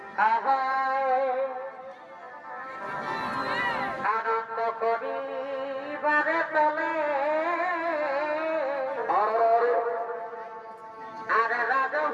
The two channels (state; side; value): identical; both; correlation 1.00